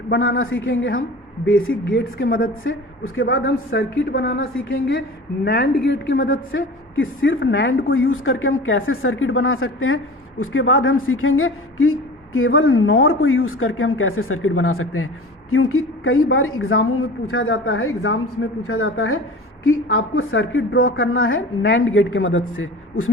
बनाना सीखेंगे हम बेसिक गेट्स के मदद से, उसके बाद हम सर्किट बनाना सीखेंगे नैंड गेट की मदद से कि सिर्फ नैंड को यूज़ करके हम कैसे सर्किट बना सकते हैं, उसके बाद हम सीखेंगे कि केवल नॉर को यूज़ करके हम कैसे सर्किट बना सकते हैं। क्योंकि कई बार एग्जामों में पूछा जाता है, एग्जाम्स में पूछा जाता है कि आपको सर्किट ड्रॉ करना है नैंड गेट के मदद से,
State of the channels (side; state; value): both; normal; correlation 0.37